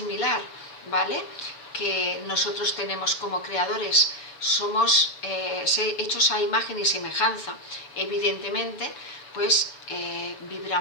¿vale?, que nosotros tenemos como creadores. Somos hechos a imagen y semejanza. Evidentemente, pues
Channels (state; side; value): late; right; 7.0 ms